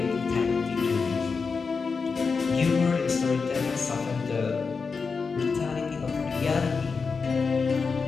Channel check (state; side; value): quieter; right; 5.0 dB